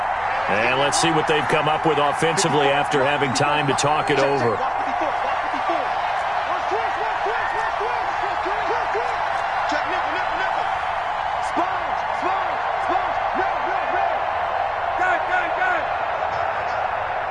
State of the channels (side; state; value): both; identical; correlation 1.00